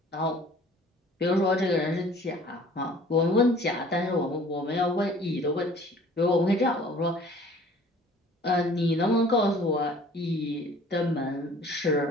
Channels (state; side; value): normal; both; correlation 0.51